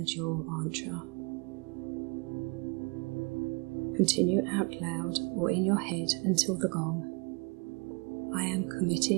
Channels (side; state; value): left; quieter; 31.2 dB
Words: your mantra. Continue out loud or in your head until the gong. I am